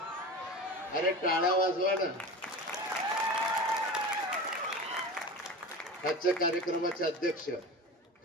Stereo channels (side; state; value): both; normal; correlation 0.31